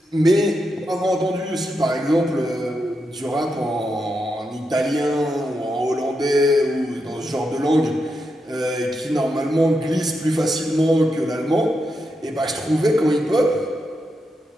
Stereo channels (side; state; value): both; normal; correlation 0.85